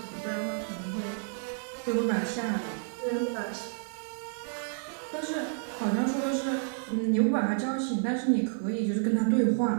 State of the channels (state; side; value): silent; left; digital silence